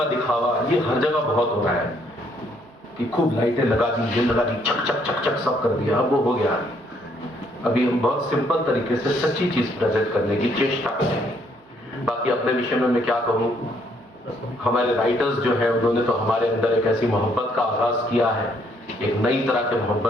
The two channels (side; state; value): both; normal; correlation 0.68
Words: दिखावा, ये हर जगह बहुत हो रहा है कि खूब लाइटें लगा दी, चक चक चक चक सब कर दिया, अब वो हो गया। अभी हम बहुत सिंपल तरीके से सच्ची चीज प्रेजेंट करने की चेष्टा करेंगे। बाकी अपने विषय में मैं क्या कहूँ, हमारे राइटर्स जो है उन्होंने तो हमारे अंदर एक ऐसी मोहब्बत का आगाज किया है, एक नई तरह के